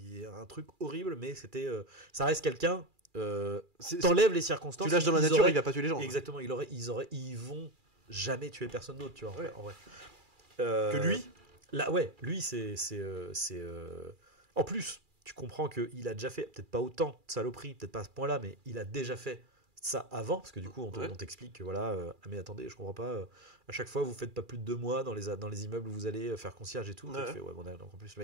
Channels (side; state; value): left; late; 2.4 ms